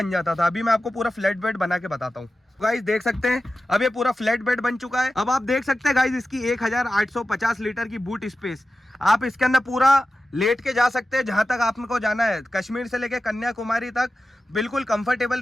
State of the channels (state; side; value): normal; both; correlation 0.93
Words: जाता था। अभी मैं आपको पूरा फ्लैट बेड बना के बताता हूँ। गाइस देख सकते हैं, अब ये पूरा फ्लैट बेड बन चुका है। अब आप देख सकते हैं गाइस इसकी 1850 लीटर की बूट स्पेस। आप इसके अंदर पूरा लेट के जा सकते हैं जहां तक आपको जाना है। कश्मीर से लेके कन्याकुमारी तक बिल्कुल कंफर्टेबल